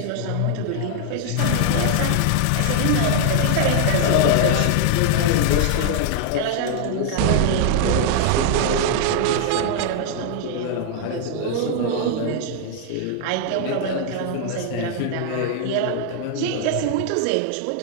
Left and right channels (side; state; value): both; different; correlation 0.00